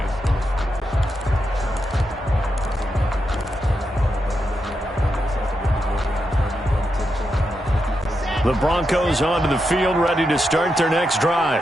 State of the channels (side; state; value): both; normal; correlation 0.85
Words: The Broncos onto the field, ready to start their next drive.